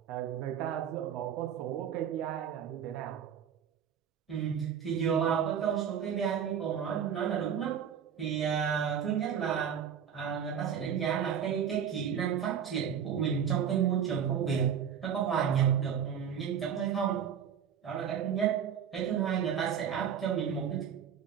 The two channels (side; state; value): left; quieter; 8.3 dB